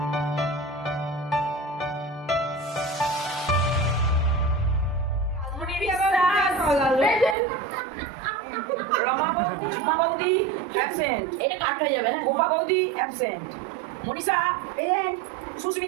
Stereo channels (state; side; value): drops out; left; at 7.4 s